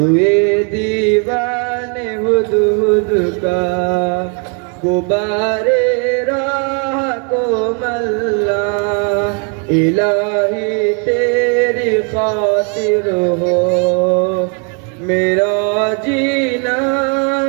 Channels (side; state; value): left; quieter; 38.0 dB